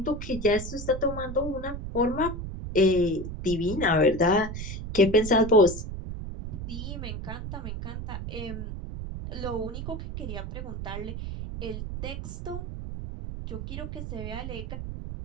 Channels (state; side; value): noise; right; rumble, 7 dB below the sound